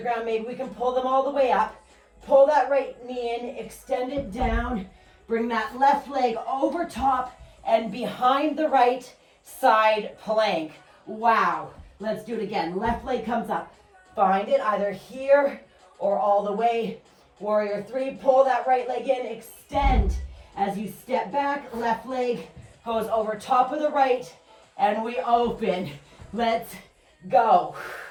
ground. Maybe we can pull them all the way up. Pull that right knee in, extend it down. Bring that left leg over top and behind the right side plank. Wow. Let's do it again. Left leg comes up. Find it either here or all the way. Warrior 3, pull that right leg in, extend. As you step back, left leg goes over top of the right and we open. Let's go.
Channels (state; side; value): identical; both; correlation 1.00